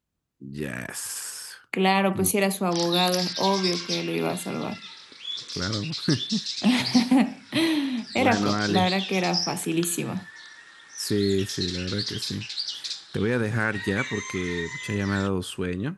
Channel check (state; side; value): identical; both; correlation 1.00